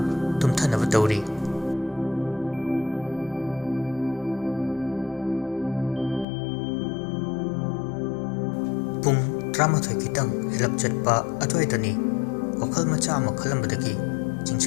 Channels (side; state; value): right; drops out; at 6.2 s